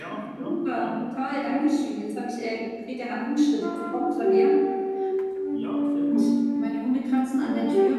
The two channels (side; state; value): both; identical; correlation 1.00